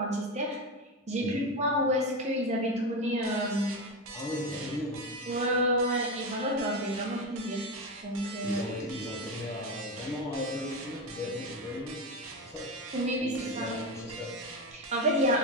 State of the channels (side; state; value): both; normal; correlation 0.17